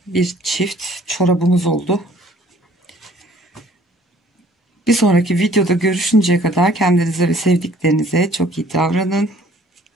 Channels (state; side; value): normal; both; correlation 0.56